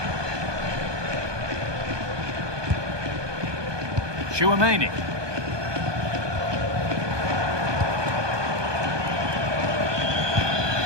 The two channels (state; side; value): late; left; 1.2 ms